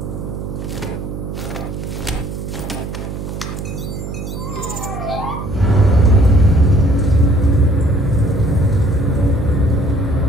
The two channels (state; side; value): noise; right; hum, 7 dB below the sound